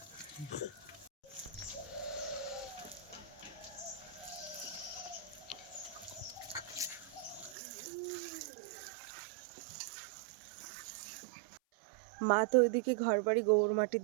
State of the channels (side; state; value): left; drops out; at 7.6 s